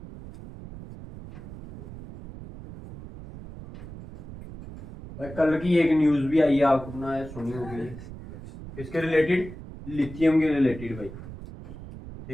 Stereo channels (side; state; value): right; noise; rumble, 13 dB below the sound